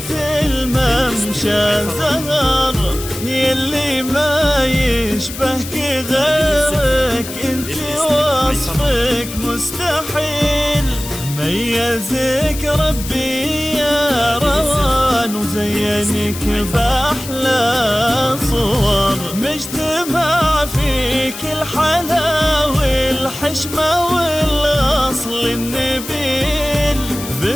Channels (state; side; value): noise; left; hiss, 11 dB below the sound